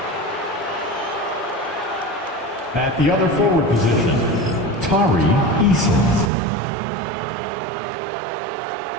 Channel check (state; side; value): drops out; left; at 6.3 s